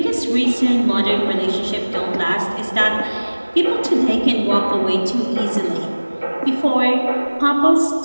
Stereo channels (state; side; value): inverted; both; correlation -1.00